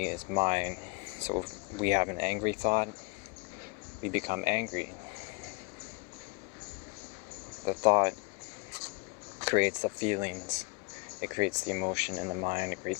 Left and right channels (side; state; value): right; quieter; 30.2 dB